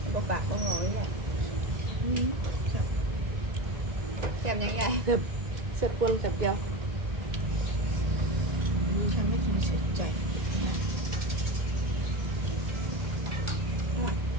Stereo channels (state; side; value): late; left; 1.9 ms